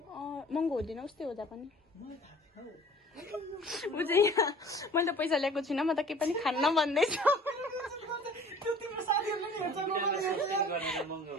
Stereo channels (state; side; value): normal; both; correlation 0.48